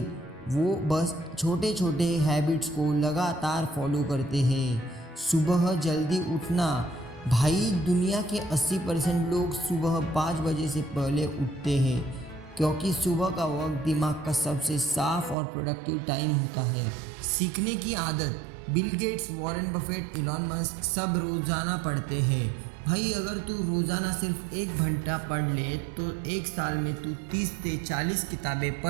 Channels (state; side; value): drops out; left; at 15.4 s